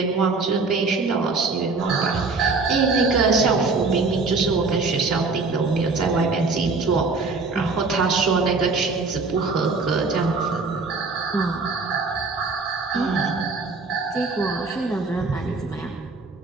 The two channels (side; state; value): left; quieter; 4.0 dB